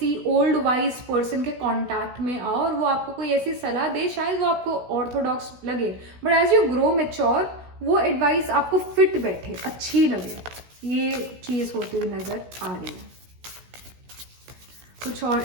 ओल्ड वाइज पर्सन के कांटेक्ट में आओ और वो आपको कोई ऐसी सलाह दे, शायद वो आपको ऑर्थोडॉक्स लगे, but as you grow mature वो एडवाइस आपको फिट बैठे, अच्छी लगे, ये चीज़ होती हुई नज़र आ रही है। कुछ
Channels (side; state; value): left; late; 16 ms